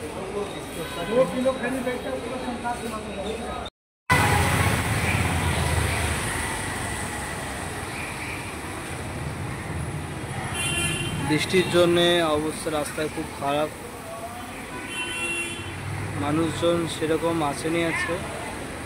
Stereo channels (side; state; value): both; identical; correlation 1.00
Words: বৃষ্টির জন্যে অবস্থা রাস্তায় খুব খারাপ, মানুষজন সেরকম আসেনি। আছে